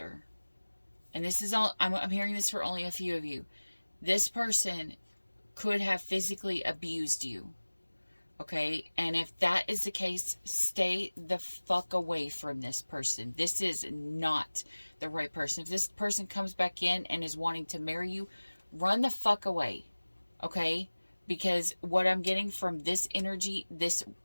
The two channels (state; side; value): inverted; both; correlation -1.00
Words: And this is all, I'm hearing this for only a few of you. This person could have physically abused you. Okay, and if that is the case, stay the fuck away from this person. This is not the right person. If this person comes back in and is wanting to marry you, run the fuck away. Okay, because what I'm getting from this energy, this